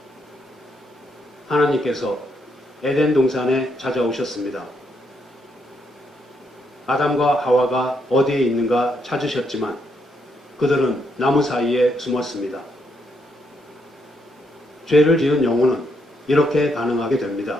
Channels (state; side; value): normal; both; correlation 0.76